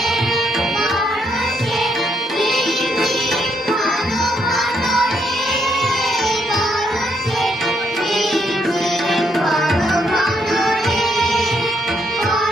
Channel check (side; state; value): both; normal; correlation 0.75